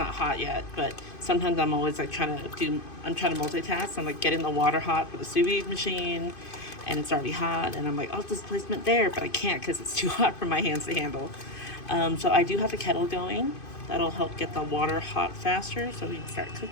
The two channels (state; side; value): late; right; 2.5 ms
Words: hot yet, but sometimes I'm always like trying to multitask. I'm like getting the water hot for the sous vide machine, and it's already hot, and I'm like, oh, displacement there, but I can't because it's too hot for my hands to handle. So I do have the kettle going. That'll help get the water hot faster so we can start